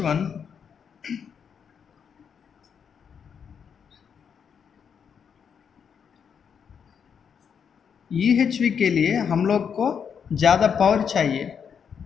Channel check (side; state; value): right; quieter; 7.2 dB